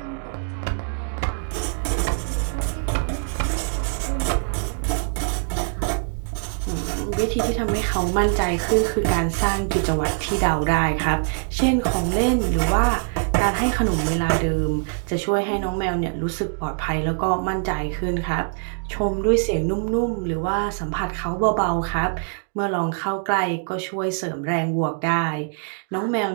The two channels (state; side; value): silent; left; 63 dB below the other